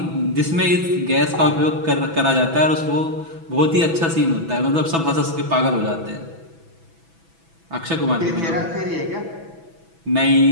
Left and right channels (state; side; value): late; left; 6.1 ms